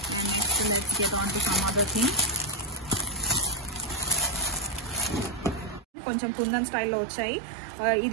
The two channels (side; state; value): left; drops out; at 5.9 s